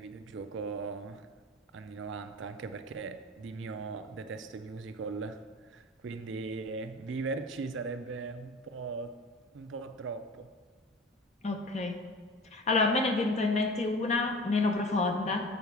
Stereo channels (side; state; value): both; normal; correlation 0.38